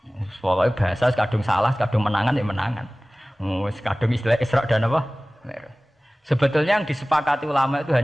Pokoknya bahasa kadung salah, kadung menangan ya menangan. Kadung istilah Isra dan Mi'raj. Sebetulnya yang disepakati ulama itu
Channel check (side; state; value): both; normal; correlation 0.98